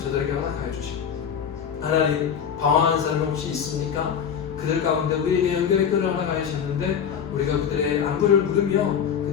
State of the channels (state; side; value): quieter; right; 7.8 dB